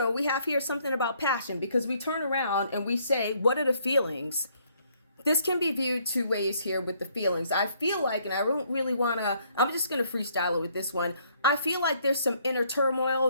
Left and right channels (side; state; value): both; inverted; correlation -0.67